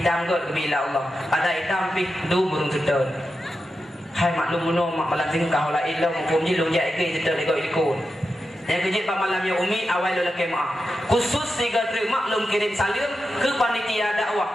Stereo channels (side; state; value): both; normal; correlation 0.90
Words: kot kebila Allah. Ada hitam pi du burung sedon. Hai maklum muno mak malam sing kau la ilau hukum ji long jai ke sedon iko ikut. Yang kejip pak malam ya umi awal lo laki maaf. Khusus tiga terima maklum kirim salim ke panitia dakwah.